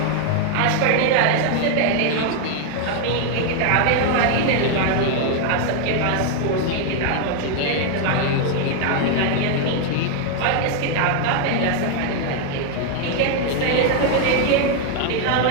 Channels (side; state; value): both; different; correlation 0.01